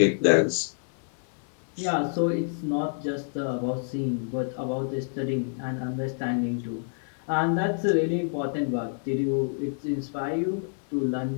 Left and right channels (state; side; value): silent; right; 60 dB below the other